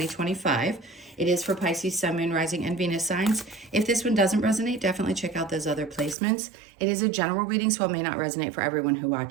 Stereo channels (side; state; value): left; drops out; at 6.2 s